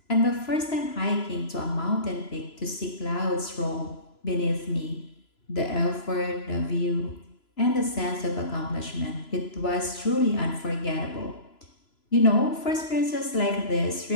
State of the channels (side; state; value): right; late; 3.0 ms